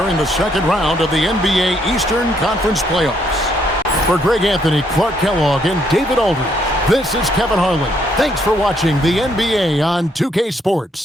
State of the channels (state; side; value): normal; both; correlation 0.71